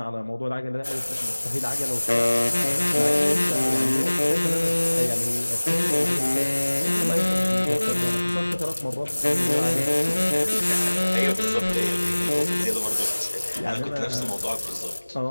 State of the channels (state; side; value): inverted; both; correlation -1.00